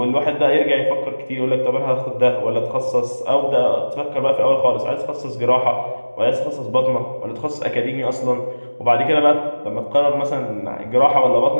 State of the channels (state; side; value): inverted; both; correlation -1.00